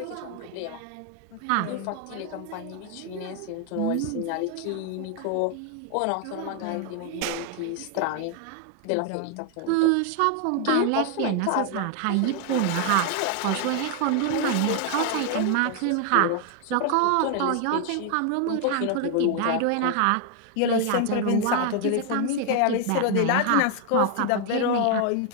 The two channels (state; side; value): different; both; correlation 0.00